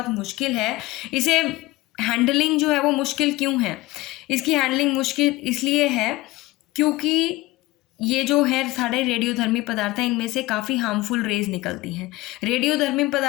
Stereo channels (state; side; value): quieter; right; 19.4 dB